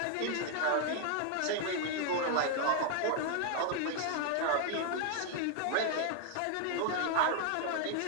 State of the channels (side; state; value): both; different; correlation 0.00